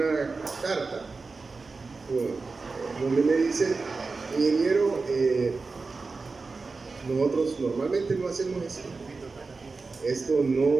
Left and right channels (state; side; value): quieter; left; 4.1 dB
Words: carta donde me dice, ingeniero, nosotros normalmente no hacemos esto. Esto